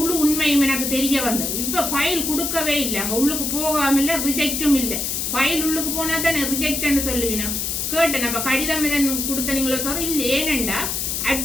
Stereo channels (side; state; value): left; noise; hiss, 1 dB below the sound